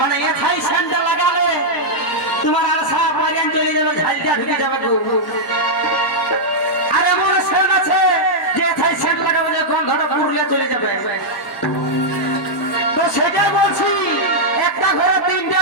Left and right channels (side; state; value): both; normal; correlation -0.05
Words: এথাই সেন্ট লাগালে তোমার আশা পরিয়ান চলে যাবে ঝালটা ঢুকে যাবে গো আর এমন সেন্ট আছে যে এথাই সেন্ট লাগাবে যে গন্ধটা পুরুলিয়া চলে যাবে তো সেটাই বলছি একটা ঘরে তিনটা